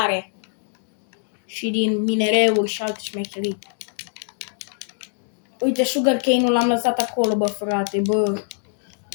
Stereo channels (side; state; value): right; silent; digital silence